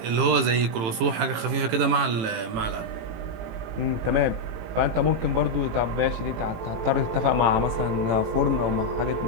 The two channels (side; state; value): left; late; 18 ms